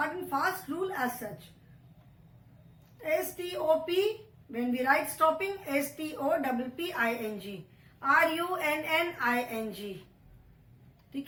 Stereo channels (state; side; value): identical; both; correlation 1.00